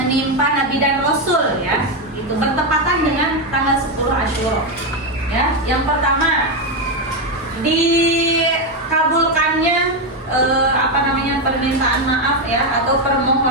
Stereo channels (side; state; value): both; normal; correlation 0.07